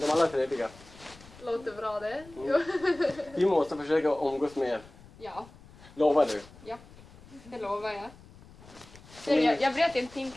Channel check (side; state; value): left; noise; rumble, 21 dB below the sound